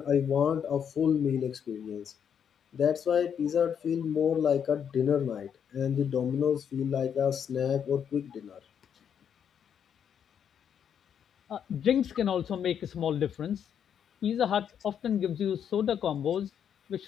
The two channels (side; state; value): right; quieter; 8.1 dB